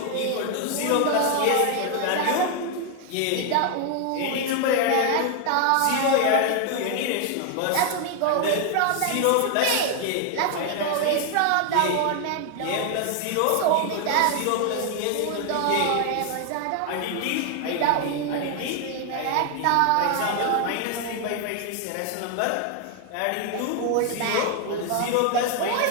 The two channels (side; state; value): both; different; correlation 0.00